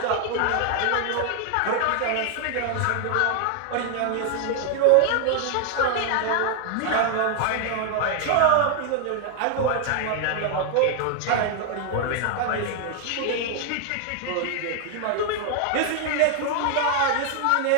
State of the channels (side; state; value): both; different; correlation 0.00